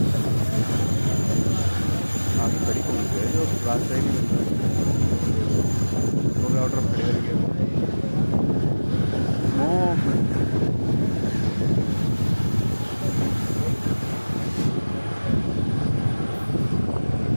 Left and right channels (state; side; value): inverted; both; correlation -1.00